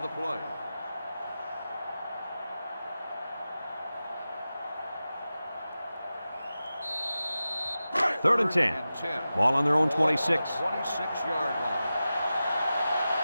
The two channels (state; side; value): inverted; both; correlation -0.94